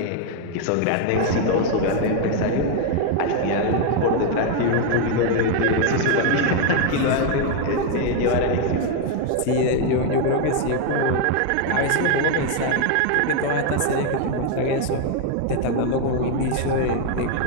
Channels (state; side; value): different; both; correlation 0.01